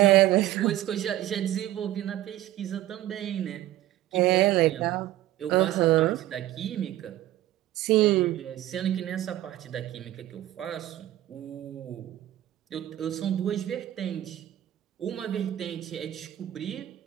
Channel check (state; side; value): quieter; left; 14.2 dB